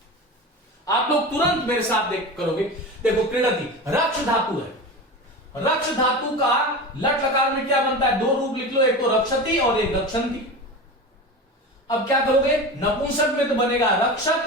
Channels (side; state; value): both; normal; correlation 0.28